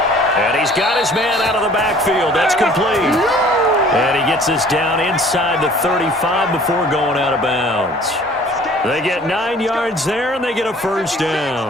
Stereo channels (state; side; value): normal; both; correlation 0.52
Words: And he's got his man out of the backfield. That's complete. And he gets this down inside the 35 before going out of bounds. They get 9 yards there, and they get a first